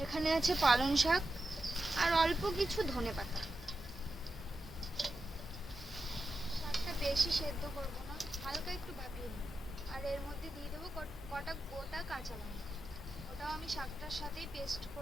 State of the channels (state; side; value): normal; both; correlation 0.90